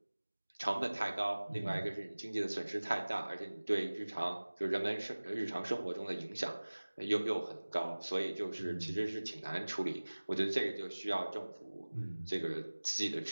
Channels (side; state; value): both; inverted; correlation -1.00